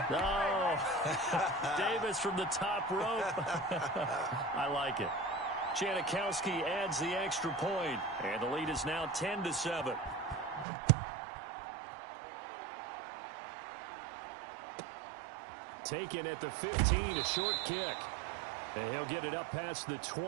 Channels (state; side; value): drops out; left; at 10.7 s